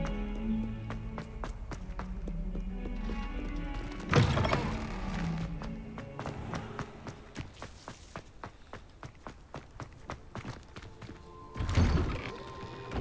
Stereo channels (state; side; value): identical; both; correlation 1.00